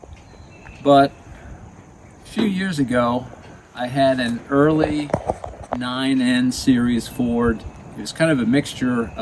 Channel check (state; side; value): identical; both; correlation 1.00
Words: But a few years ago, I had an early 9N series Ford. It was kind of a mixture